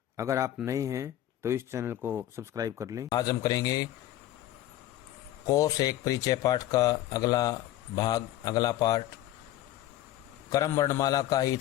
अगर आप नए हैं तो इस चैनल को सब्सक्राइब कर लें। आज हम करेंगे कोर्स एक परिचय पाठ का अगला पाठ। क्रम वर्णमाला का ही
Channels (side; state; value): right; quieter; 13.7 dB